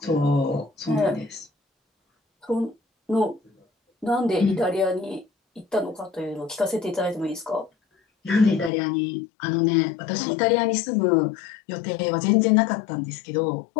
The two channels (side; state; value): right; drops out; at 8.7 s